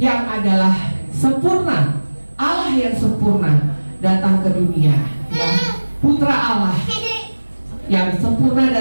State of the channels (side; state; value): both; inverted; correlation -1.00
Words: adalah sempurna, Allah yang sempurna datang ke dunia. Ya, Putra Allah yang sempurna